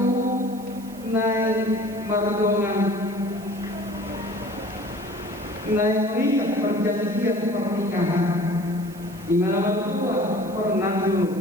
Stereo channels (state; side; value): noise; right; hiss, 21 dB below the sound